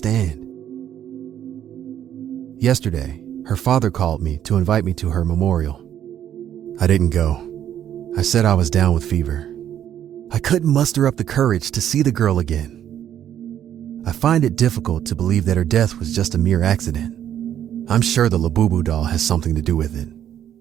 Yesterday, her father called me to invite me to her memorial. I didn't go. I said I was down with fever. I couldn't muster up the courage to see the girl again. I find it difficult to believe that her death was just a mere accident. I'm sure the Labubu doll has something to do with it.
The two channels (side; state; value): left; quieter; 10.4 dB